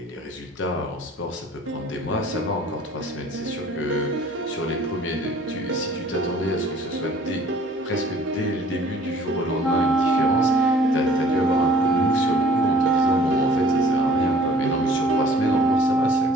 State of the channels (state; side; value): normal; both; correlation 0.53